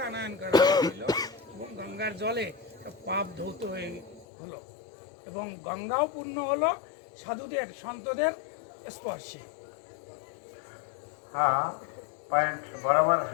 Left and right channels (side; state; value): right; drops out; at 4.2 s